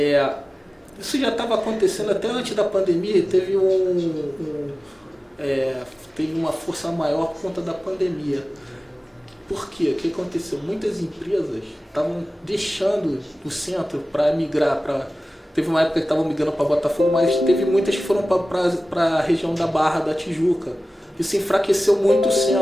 Isso já estava acontecendo até antes da pandemia, teve uma força maior por conta da pandemia. Por quê? O que aconteceu? Muitas empresas estavam deixando o centro para migrar para... Teve uma época que estavam migrando para Botafogo, mas teve muitas que foram para a região da Barra da Tijuca. Isso enfraqueceu muito o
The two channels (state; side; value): normal; both; correlation 0.96